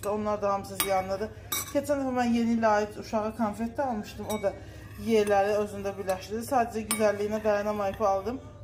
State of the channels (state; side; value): identical; both; correlation 1.00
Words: da. Onlar da hamısı ziyanlıdır. Keçən dəfə mən yeni ilə aid uşağa konfet də almışdım. O da yeyələri özündə birləşdirdi. Sadəcə güzəlliyinə dayanamayıb aldım.